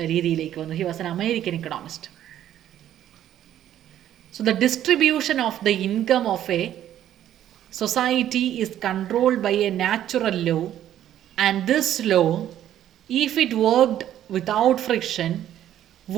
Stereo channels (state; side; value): quieter; left; 11.5 dB